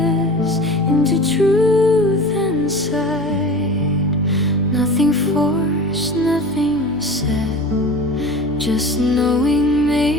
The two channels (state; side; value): noise; left; hum, 25 dB below the sound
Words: into truth and sight. Nothing forced, nothing said, just knowing